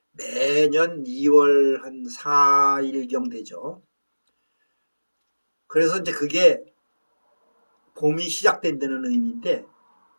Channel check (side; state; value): both; inverted; correlation -1.00